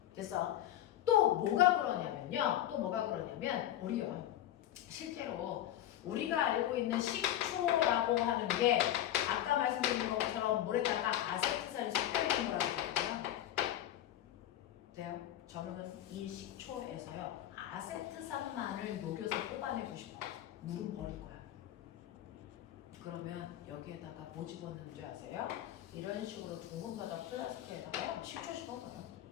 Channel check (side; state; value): right; quieter; 12.4 dB